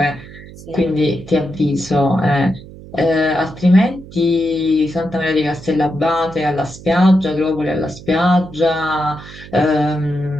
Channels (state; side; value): noise; right; hum, 17 dB below the sound